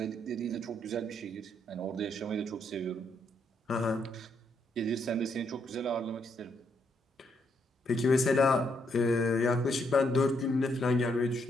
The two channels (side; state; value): both; normal; correlation 0.75